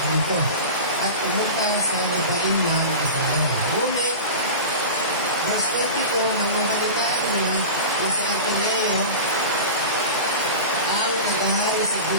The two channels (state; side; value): inverted; both; correlation -0.30